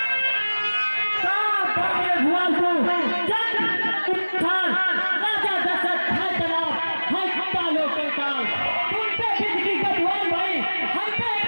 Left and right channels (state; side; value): inverted; both; correlation -1.00